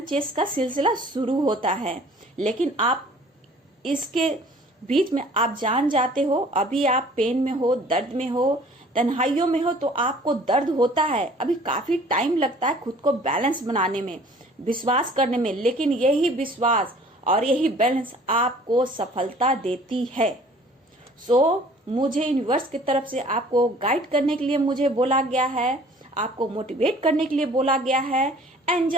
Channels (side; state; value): both; normal; correlation 0.52